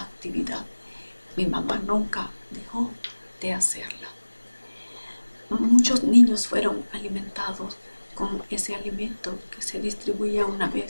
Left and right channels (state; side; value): inverted; both; correlation -1.00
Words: Mi mamá nunca dejó de hacerla. Muchos niños fueron alimentados con ese alimento que se distribuía una